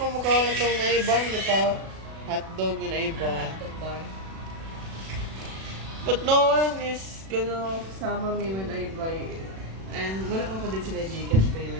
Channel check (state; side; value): late; left; 36 ms